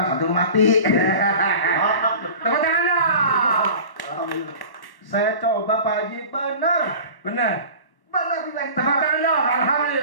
nanti lu mati. Tepuk tangan dong. Saya coba Pak Haji benar bilang Tepuk tangan dong.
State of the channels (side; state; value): right; late; 1.1 ms